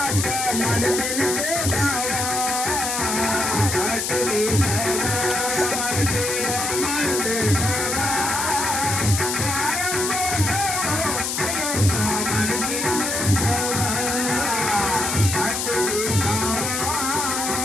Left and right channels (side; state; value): left; noise; hiss, 1 dB below the sound